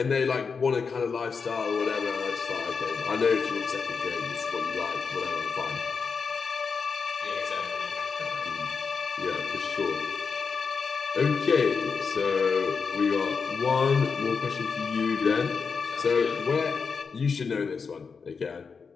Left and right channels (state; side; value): quieter; right; 5.4 dB